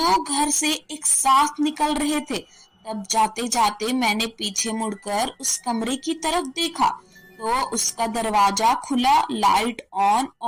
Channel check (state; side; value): identical; both; correlation 1.00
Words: घर से एक साथ निकल रहे थे। तब जाते जाते मैंने पीछे मुड़कर उस कमरे की तरफ देखा तो उसका दरवाजा खुला, लाइट ऑन